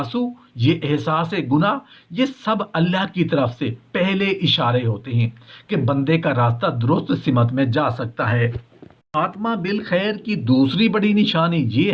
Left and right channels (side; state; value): both; identical; correlation 1.00